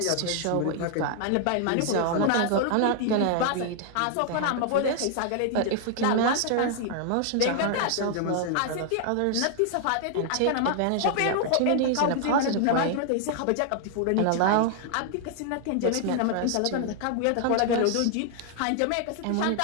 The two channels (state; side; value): different; both; correlation 0.00